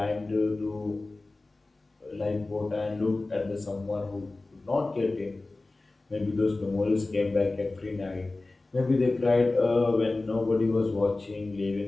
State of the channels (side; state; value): right; quieter; 3.2 dB